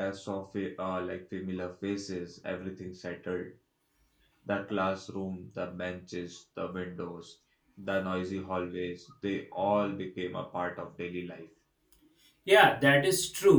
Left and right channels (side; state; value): both; identical; correlation 1.00